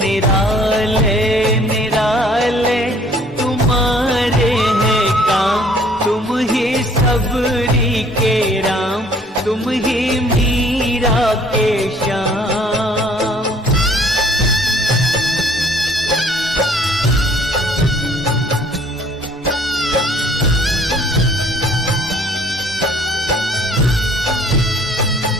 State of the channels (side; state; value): both; normal; correlation 0.57